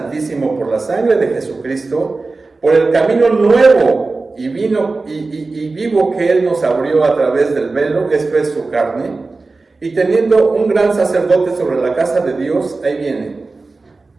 por la sangre de Jesucristo, por el camino nuevo y vivo que Él nos abrió a través del velo, esto es su carne, y teniendo un gran sacerdote sobre la casa de Dios, ahí viene,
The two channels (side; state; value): left; quieter; 3.7 dB